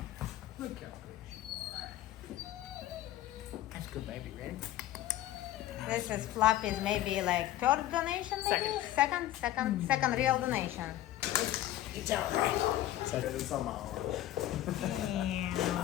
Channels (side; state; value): right; quieter; 13.8 dB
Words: Look how good you are. That's good, baby. Ready? This is Fluffy's maybe like third donation, maybe? Second real donation. It's all right. Second is on my arm. Yeah.